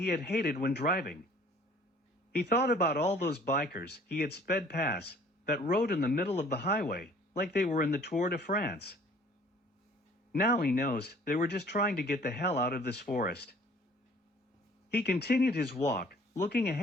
had hated when driving. He thought about all those bikers he had sped past that rode in the middle of the highway like they were in the Tour de France. Now he knows they were just trying to get the hell out of this forest. He continued his walk, looking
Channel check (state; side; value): normal; both; correlation 0.54